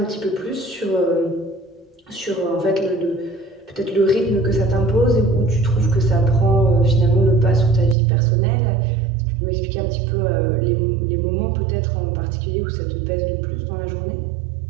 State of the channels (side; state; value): left; drops out; at 8.0 s